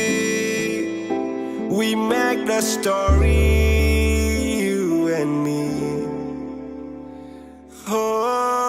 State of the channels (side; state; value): both; identical; correlation 1.00